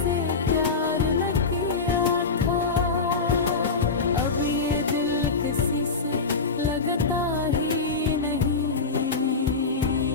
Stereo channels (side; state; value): right; quieter; 4.3 dB